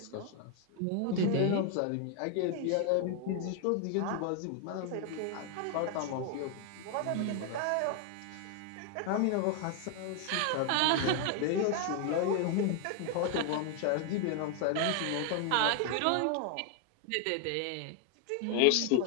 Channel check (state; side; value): different; both; correlation 0.00